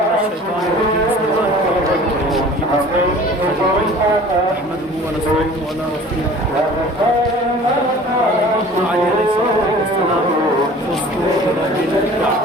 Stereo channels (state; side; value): normal; both; correlation 0.45